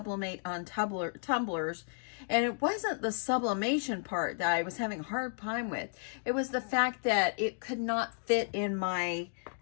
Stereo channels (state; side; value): silent; right; digital silence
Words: on tumblers, and it wasn't the sublimation part that I was having a hard time with. It was the fact that it could not fit in my